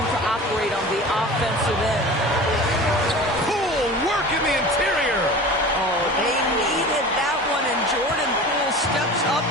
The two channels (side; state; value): both; normal; correlation 0.37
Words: operate on the offensive end. Poole work in the interior. Oh, they needed that one, and Jordan Poole steps up